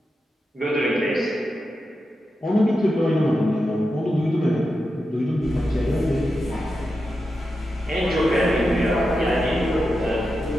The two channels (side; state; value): both; normal; correlation 0.89